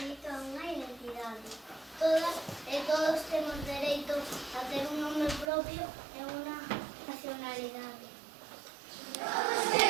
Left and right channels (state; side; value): drops out; left; at 5.5 s